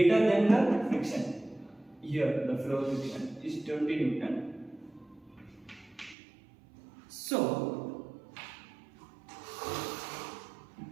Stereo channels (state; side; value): drops out; left; at 6.2 s